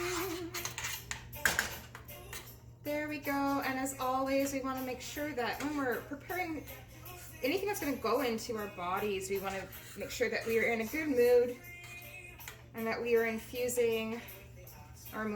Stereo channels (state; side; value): identical; both; correlation 1.00